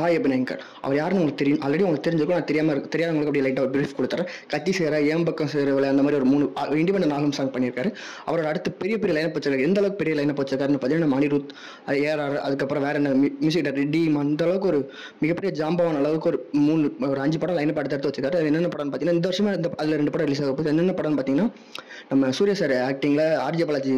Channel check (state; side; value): identical; both; correlation 1.00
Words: அபிநயங்கர் அவர் யாருன்னு உங்களுக்கு தெரியும், ஆல்ரெடி உங்களுக்கு தெரிஞ்சிருக்கும். நான் தெரியாதவங்களுக்கு அப்படி லைட்டாக பிரீஃப் கொடுத்துறேன். கத்தி சேர ஏன் பக்கம் சேரவில்லை அந்த மாதிரி ஒரு 3 இண்டிபெண்டன்ட் ஆல்பம் சாங் பண்ணியிருக்காரு. அவரோட அடுத்து பெரிய பெரிய லைனப் வச்சிருக்காரு. எந்த அளவுக்கு பெரிய லைனப் வச்சிருக்காருன்னு பார்த்தீங்கன்னா நம்ம அனிருத், ஏஆர், அதுக்கப்புறம் வேற என்ன மியூசிக் டைரக்டர் டீம், அந்த அளவுக்கு ஒரு மிகப்பெரிய ஜாம்பவான அளவுக்கு ஒரு 5 படம் லைனப் எடுத்து வச்சிருக்காரு. அது என்னென்ன படம்னு பார்த்தீங்கன்னா இந்த வருஷமா அதில் 2 படம் ரிலீஸ் ஆக போகுது. என்னென்ன படம்னு பார்த்தீங்கன்னா நம்ம சூர்யா சார் ஆக்டிங்கில் ஆர்ஜே